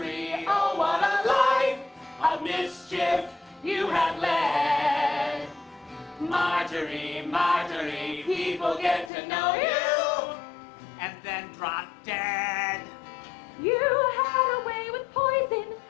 oh what a life of mischief you had led. Marjorie, Marjorie, people get to know you and then drop dead. You had a way with poison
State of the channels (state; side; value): drops out; right; at 9.1 s